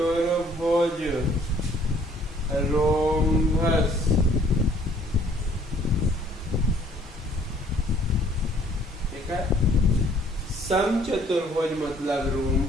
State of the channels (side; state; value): both; normal; correlation 0.60